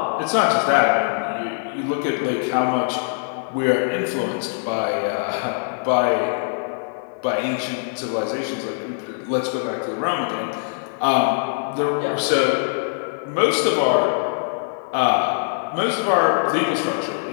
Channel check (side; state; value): right; silent; 64 dB below the other